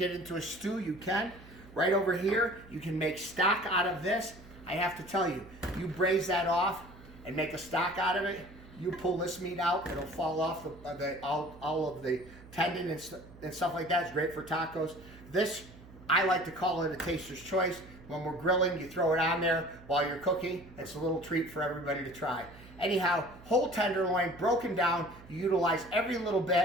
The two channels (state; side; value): noise; right; hum, 20 dB below the sound